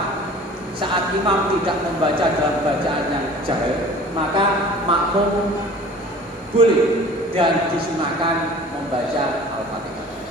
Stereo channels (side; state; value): both; normal; correlation 0.45